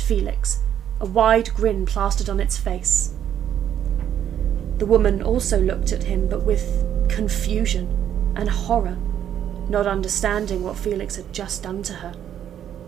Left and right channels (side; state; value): left; quieter; 10.0 dB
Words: a wide grin plastered on its face. The woman also looked at him, but with confusion and horror, not understanding what Felix had just done to her.